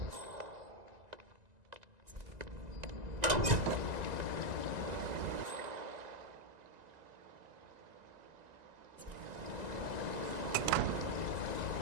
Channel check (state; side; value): late; left; 2.0 ms